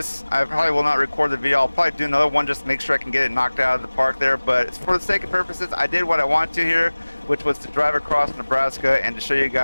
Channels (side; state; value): both; inverted; correlation -1.00